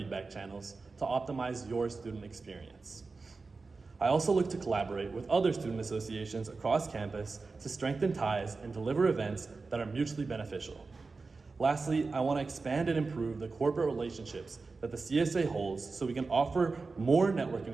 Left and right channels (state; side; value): quieter; left; 4.1 dB